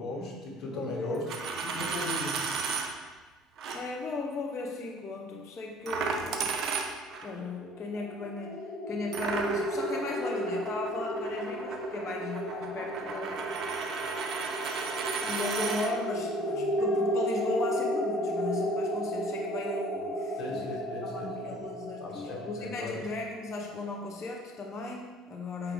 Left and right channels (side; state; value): both; normal; correlation 0.52